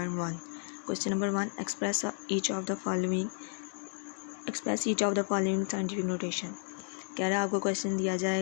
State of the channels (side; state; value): right; silent; digital silence